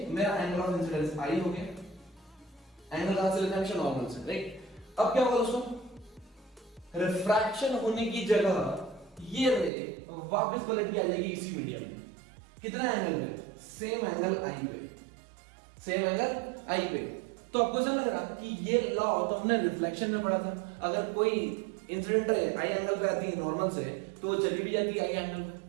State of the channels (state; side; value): drops out; left; at 9.7 s